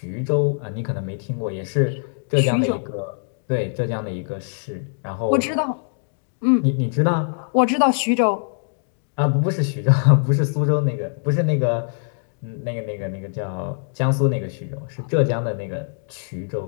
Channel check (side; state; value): right; silent; digital silence